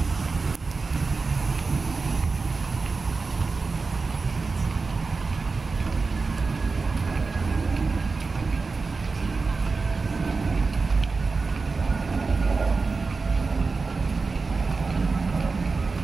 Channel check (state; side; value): quieter; left; 4.2 dB